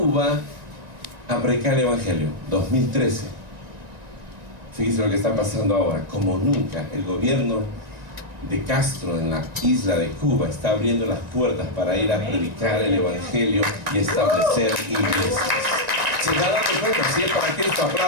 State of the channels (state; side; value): late; left; 1.9 ms